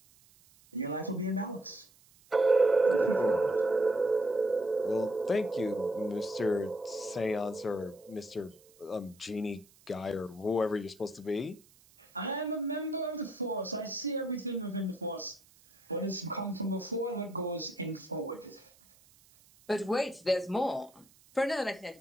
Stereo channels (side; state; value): right; noise; hiss, 28 dB below the sound